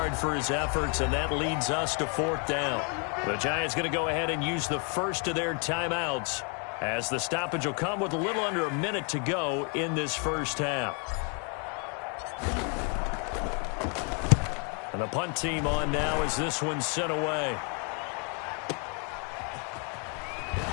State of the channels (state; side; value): quieter; right; 37.2 dB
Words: for his efforts, and that leads us to 4th down. The Giants going to go ahead and use the first of their timeouts, as the stoppage will come with a little under a minute to go in this first half. And the punt team on now as this one's sent away.